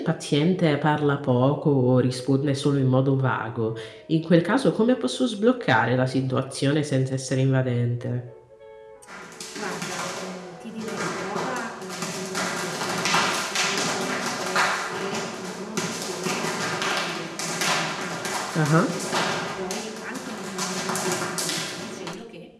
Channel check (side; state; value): both; identical; correlation 1.00